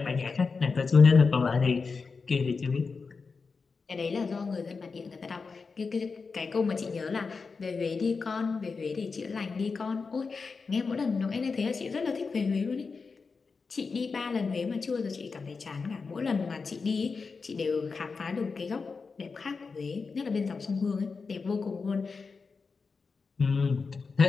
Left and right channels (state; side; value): quieter; right; 4.7 dB